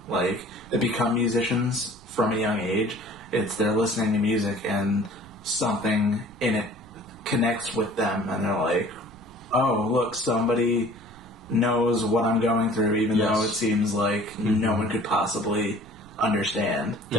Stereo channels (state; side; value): noise; right; rumble, 22 dB below the sound